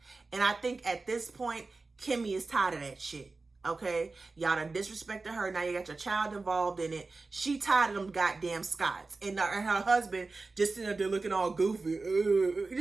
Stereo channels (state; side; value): quieter; left; 3.7 dB